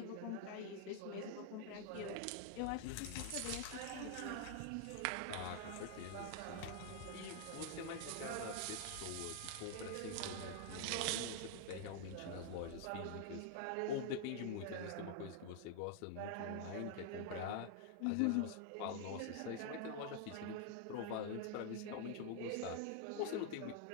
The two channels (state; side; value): different; both; correlation 0.00